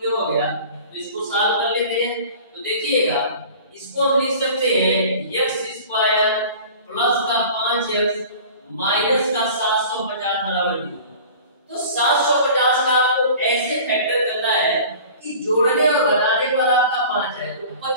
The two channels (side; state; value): both; inverted; correlation -0.42